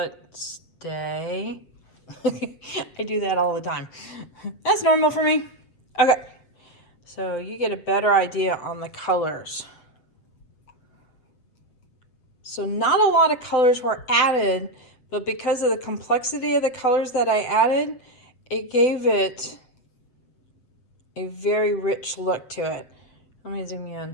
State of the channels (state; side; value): late; right; 7.8 ms